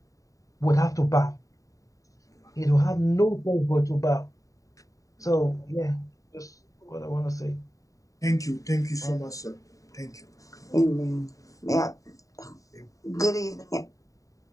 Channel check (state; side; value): late; right; 0.16 ms